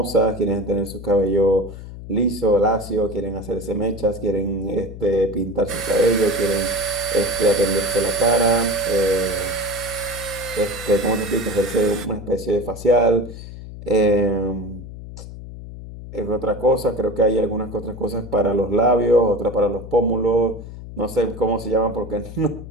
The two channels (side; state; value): left; noise; hum, 12 dB below the sound